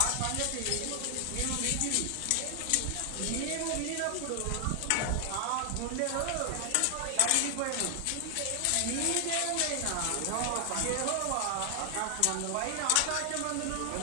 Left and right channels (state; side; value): different; both; correlation 0.00